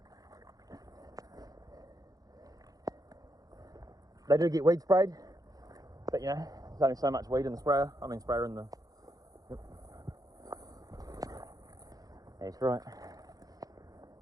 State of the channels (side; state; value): left; late; 0.18 ms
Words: They do get weed sprayed, but you know, there's only so much weed in the sprayer. I mean, sprayer in the. Yep. That's right.